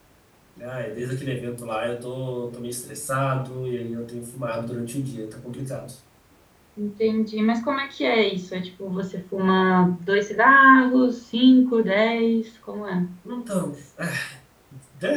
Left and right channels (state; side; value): identical; both; correlation 1.00